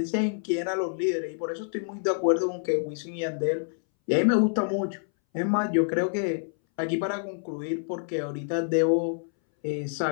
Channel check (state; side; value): silent; right; 60 dB below the other